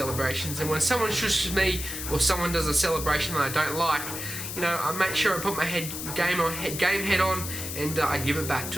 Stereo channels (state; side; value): noise; left; hiss, 6 dB below the sound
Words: and when someone shushes me or someone does a celebration that I don't like, I make sure I put my game head on, and I give it back